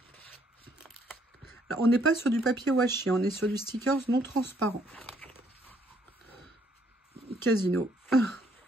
Alors, on n'est pas sur du papier washi, on est sur du stickers non transparent. Casino.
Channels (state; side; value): normal; both; correlation 0.68